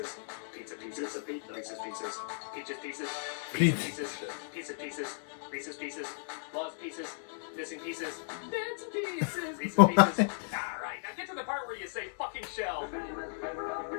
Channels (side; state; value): right; silent; digital silence